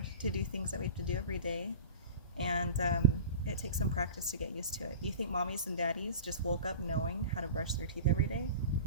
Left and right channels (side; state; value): both; inverted; correlation -0.35